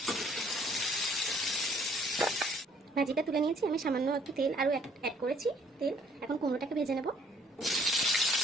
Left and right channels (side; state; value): both; normal; correlation 0.61